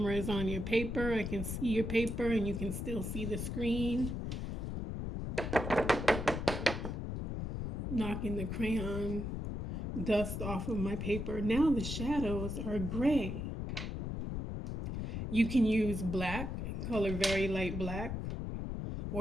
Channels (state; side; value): noise; left; rumble, 3 dB below the sound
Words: is on your paper. I can see your paper and you can still see the screen. Knocking the crayon dust off of my paper. Now the shadows are gray. You can use black, color very light black,